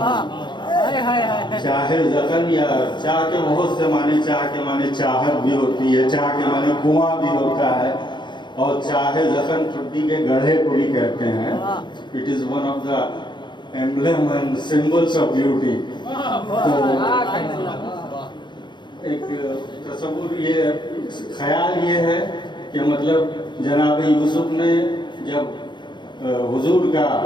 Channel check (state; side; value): late; right; 0.22 ms